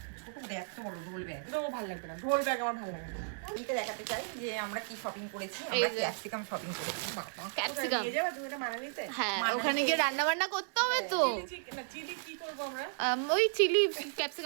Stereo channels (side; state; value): left; silent; digital silence